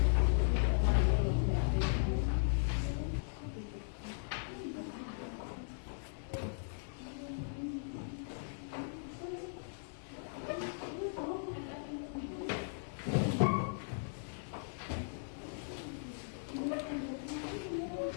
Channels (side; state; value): right; silent; digital silence